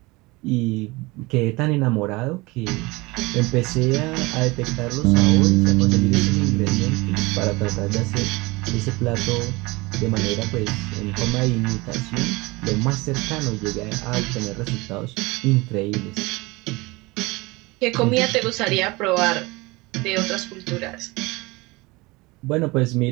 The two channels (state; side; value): quieter; left; 23.3 dB